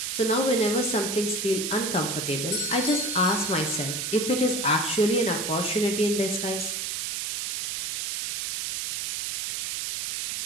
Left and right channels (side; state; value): right; noise; hiss, 1 dB below the sound